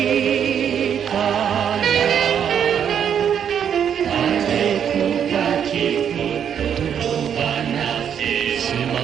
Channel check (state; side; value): quieter; left; 8.4 dB